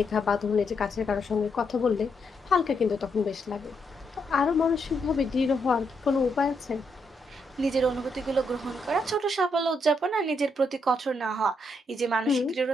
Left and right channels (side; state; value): both; normal; correlation 0.78